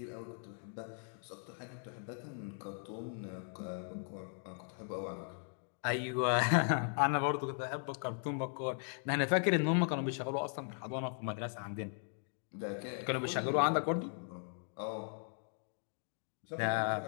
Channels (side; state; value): right; silent; 52 dB below the other